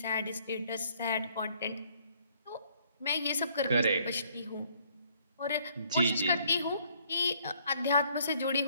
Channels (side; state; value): both; inverted; correlation -0.65